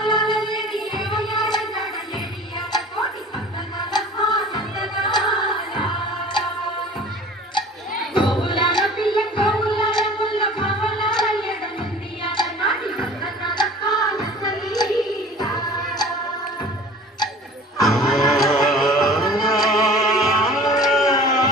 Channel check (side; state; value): both; normal; correlation 0.44